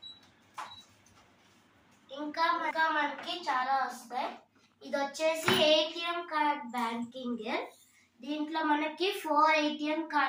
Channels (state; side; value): identical; both; correlation 1.00